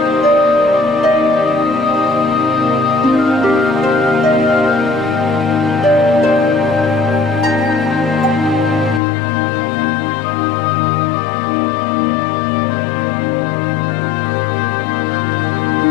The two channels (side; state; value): right; drops out; at 9.0 s